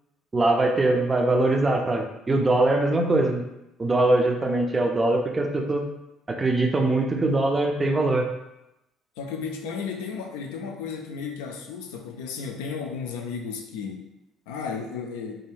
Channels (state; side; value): normal; both; correlation 0.78